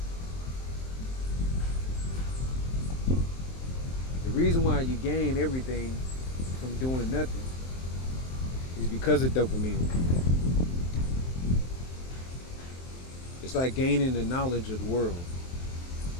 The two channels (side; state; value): right; late; 23 ms